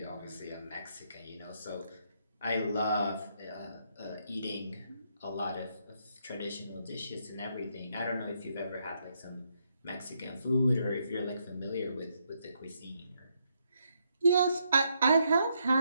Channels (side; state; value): both; inverted; correlation -0.77